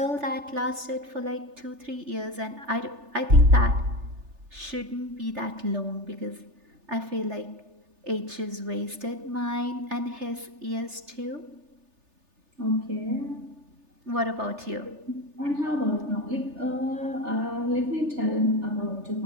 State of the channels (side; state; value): left; late; 3.3 ms